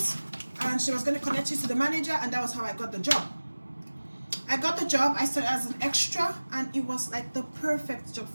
and she was going to connect you to the manager, and that was how I got the job. I got the job. I started as an extra, and it was like the perfect job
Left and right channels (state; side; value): inverted; both; correlation -1.00